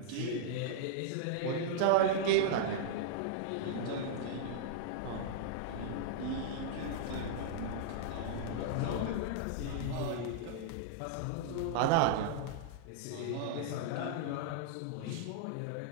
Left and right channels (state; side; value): different; both; correlation -0.02